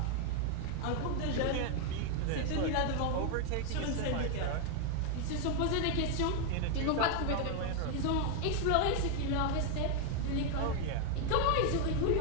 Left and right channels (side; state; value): both; different; correlation 0.00